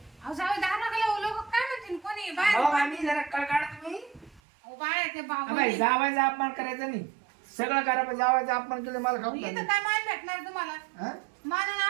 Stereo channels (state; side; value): drops out; left; at 4.4 s